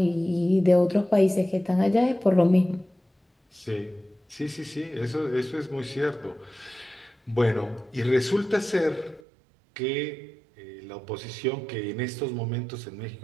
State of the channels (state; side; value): drops out; left; at 9.2 s